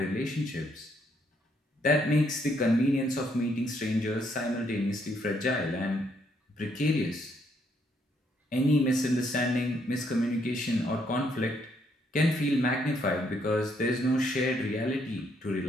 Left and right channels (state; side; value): normal; both; correlation 0.72